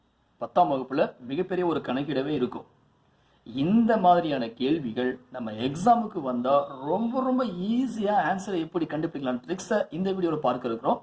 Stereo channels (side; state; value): both; identical; correlation 1.00